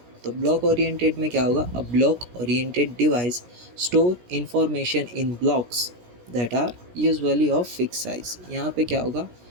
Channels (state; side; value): late; left; 17 ms